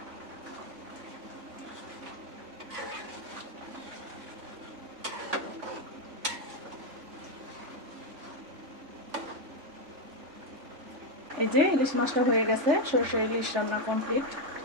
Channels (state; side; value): late; left; 3.4 ms